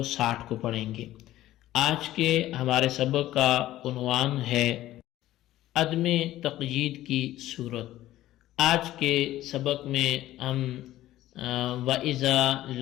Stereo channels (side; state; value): right; quieter; 14.7 dB